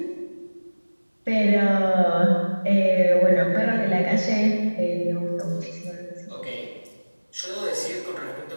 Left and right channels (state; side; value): inverted; both; correlation -1.00